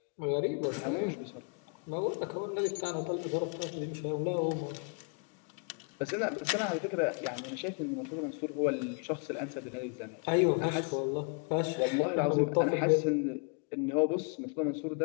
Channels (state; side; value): quieter; right; 37.8 dB